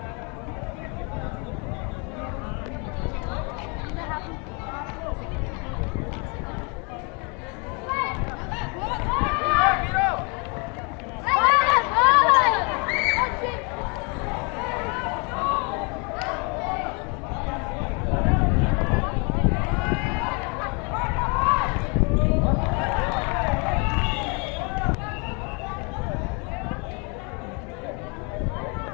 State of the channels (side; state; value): right; quieter; 33.0 dB